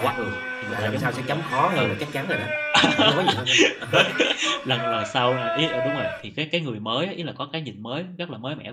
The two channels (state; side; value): identical; both; correlation 1.00